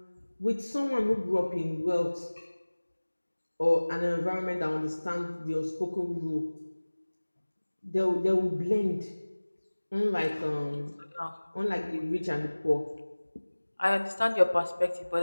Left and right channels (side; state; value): both; inverted; correlation -1.00